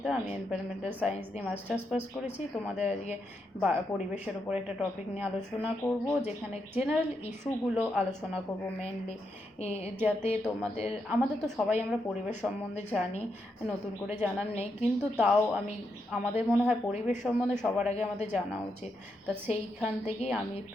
আমি এনভায়রনমেন্টাল সায়েন্স দিয়ে মাস্টার্স পাস করেছি। তোমাদের আজকে পরিবেশের উপর একটা টপিক নিয়ে আলোচনা করব, যেখানে জেনারেল ইস্যুগুলো আলোচনা করব মেনলি, যাতে আমাদের তো সবাই আমরা পরিবেশ সম্বন্ধে জানি, নতুন করে জানার নেই, কিন্তু তাও আমাদের মনে হয় পরিবেশ সম্বন্ধে সবার আগে আমাদের জানা উচিত। তা সেইখান থেকেই আমি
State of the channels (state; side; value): normal; both; correlation 0.82